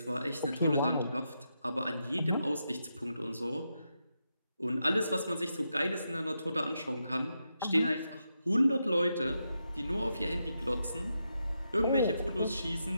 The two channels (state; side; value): inverted; both; correlation -0.85